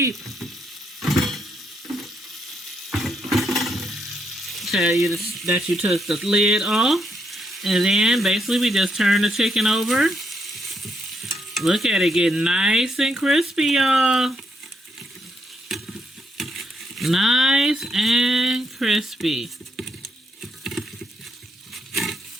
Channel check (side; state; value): both; normal; correlation 0.77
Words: Tell you that you took the lid off. And then basically we just turn the chicken over. Look at it getting nice and crispy, y'all. Nice and crispy.